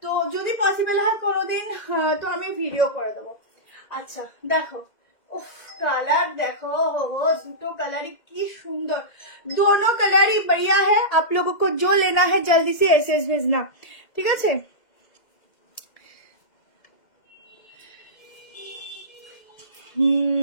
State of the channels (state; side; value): late; right; 2.1 ms